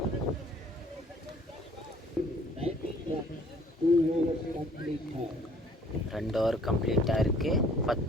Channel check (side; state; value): both; normal; correlation 0.57